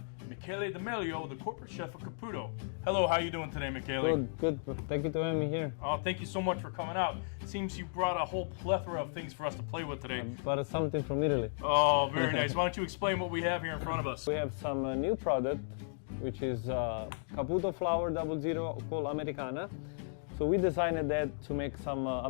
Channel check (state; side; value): silent; right; digital silence